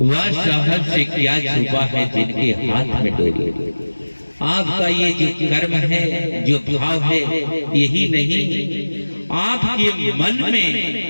वह साहब से क्या छुपा है जिनके हाथ में डोरी। आपका ये जो कर्म है, जो भाव है, यही नहीं, आपके मन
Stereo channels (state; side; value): inverted; both; correlation -1.00